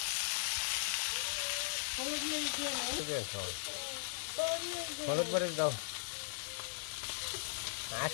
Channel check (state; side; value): silent; right; digital silence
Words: হলুদ মরিচ দাও